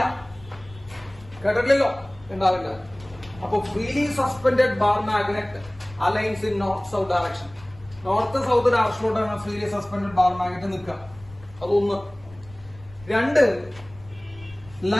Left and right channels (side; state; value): left; noise; rumble, 21 dB below the sound